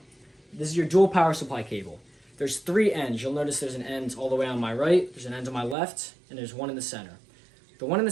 This is your dual power supply cable. There's 3 ends. You'll notice there's an end all the way on my right, there's an end on my left, and there's one in the center. The one in the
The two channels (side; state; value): left; drops out; at 5.8 s